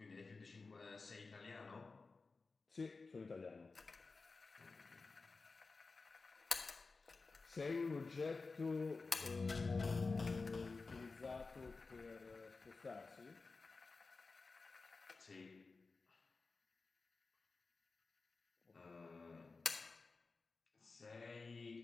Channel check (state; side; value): quieter; right; 4.0 dB